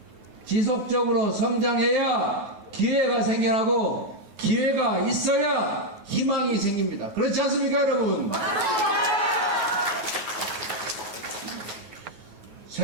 지속적으로 성장해야 기회가 생겨나고 기회가 있어야 희망이 생깁니다. 그렇지 않습니까, 여러분?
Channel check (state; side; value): late; left; 9.3 ms